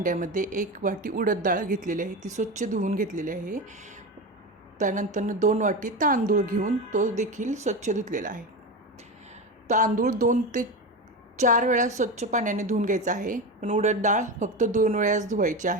1 वाटी उडद डाळ घेतलेली आहे, ती स्वच्छ धुवून घेतलेली आहे. त्यानंतर 2 वाटी तांदूळ घेऊन तो देखील स्वच्छ धुतलेला आहे. तांदूळ 2 ते 4 वेळा स्वच्छ पाण्याने धुवून घ्यायचा आहे, पण उडद डाळ फक्त 2 वेळाच धुवायची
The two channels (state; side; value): normal; both; correlation 0.21